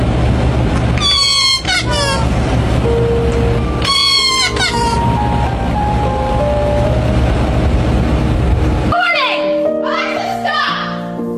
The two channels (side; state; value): both; identical; correlation 1.00